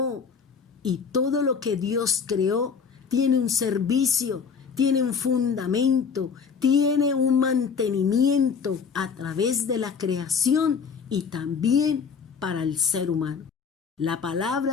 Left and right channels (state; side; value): quieter; right; 6.0 dB